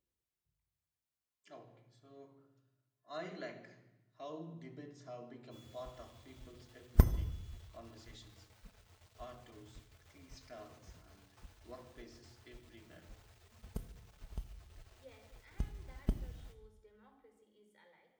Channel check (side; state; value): both; identical; correlation 1.00